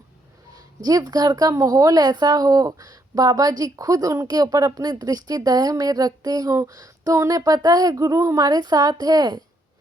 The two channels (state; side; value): normal; both; correlation 0.73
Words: जिस घर का माहौल ऐसा हो, बाबा जी खुद उनके ऊपर अपनी दृष्टि दया में रखते हों, तो उन्हें पता है गुरु हमारे साथ है,